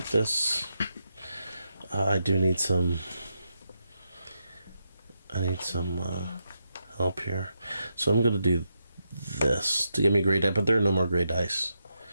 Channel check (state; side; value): inverted; both; correlation -0.84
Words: this? I do need some... I need some help here. So I'm going to do this to give me gray die, but there are no more gray dice.